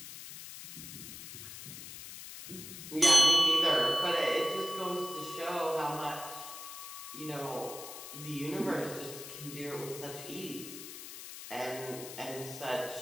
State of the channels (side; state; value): left; noise; hiss, 11 dB below the sound